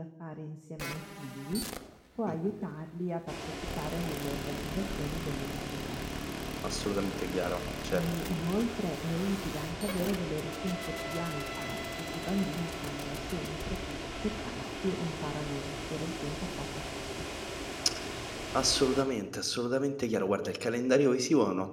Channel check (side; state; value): both; identical; correlation 1.00